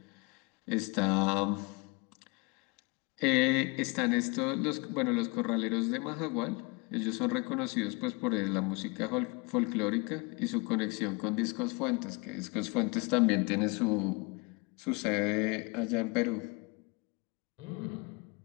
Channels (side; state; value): right; quieter; 29.4 dB